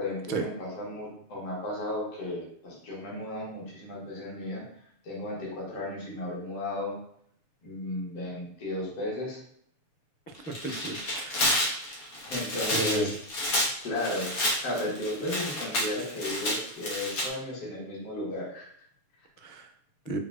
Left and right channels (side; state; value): right; late; 7.1 ms